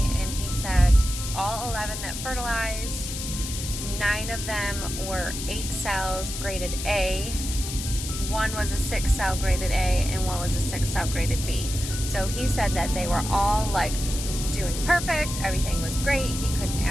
and he said all 11 that fertilized, 9 of them were 8 cells graded A, 1 was a 6 cell graded A, and 1 was a 6 cell graded B. So he said that they were all like doing perfect, everything was great, he couldn't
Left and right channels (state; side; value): noise; left; hiss, 7 dB below the sound